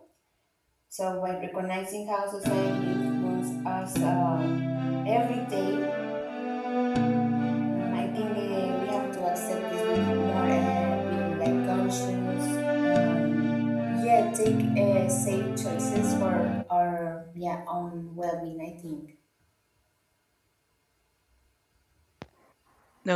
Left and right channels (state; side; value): identical; both; correlation 1.00